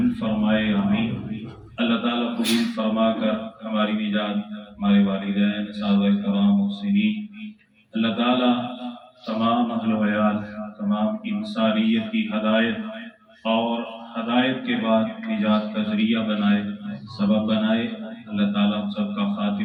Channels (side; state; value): both; identical; correlation 1.00